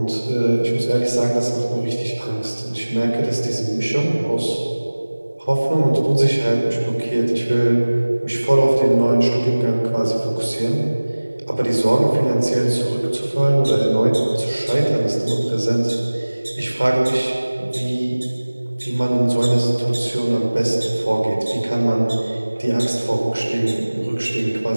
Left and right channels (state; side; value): inverted; both; correlation -1.00